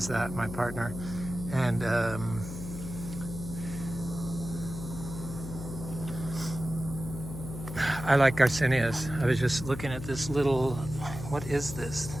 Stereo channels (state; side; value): noise; left; hum, 9 dB below the sound